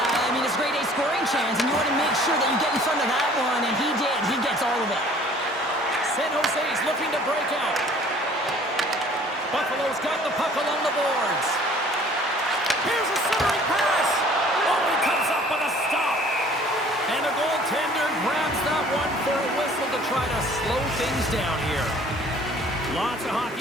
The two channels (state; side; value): normal; both; correlation 0.53